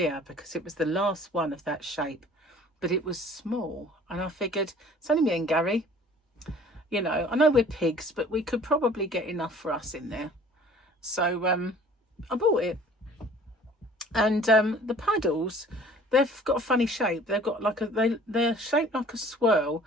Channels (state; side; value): normal; both; correlation 0.50